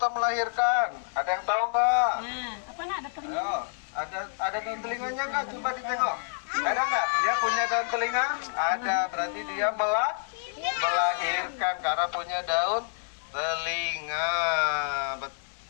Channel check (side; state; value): right; silent; digital silence